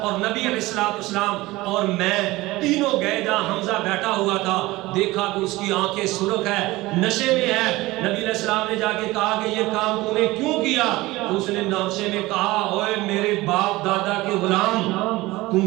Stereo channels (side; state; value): left; quieter; 19.6 dB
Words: نبی علیہ السلام اور میں تینوں گئے جہاں حمزہ بیٹھا ہوا تھا، دیکھا کہ اس کی آنکھیں سرخ ہے، نشے میں ہے۔ نبی علیہ السلام نے جا کے کہا کہ یہ کام تو نے کیوں کیا؟ اس نے نشے میں کہا اوے میرے باپ دادا کے غلام، تم